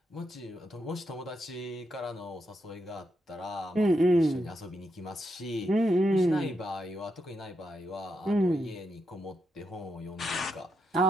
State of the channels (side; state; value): both; normal; correlation 0.82